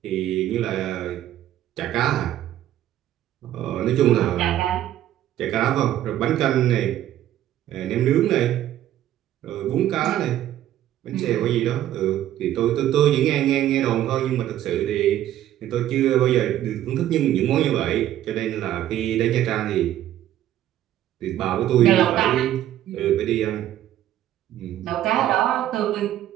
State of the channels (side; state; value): left; quieter; 12.5 dB